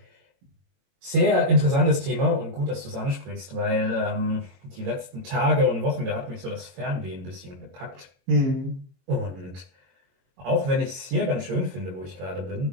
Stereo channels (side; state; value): left; late; 22 ms